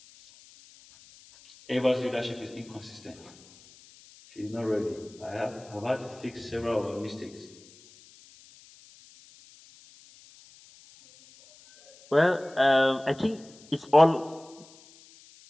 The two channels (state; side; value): noise; left; hiss, 24 dB below the sound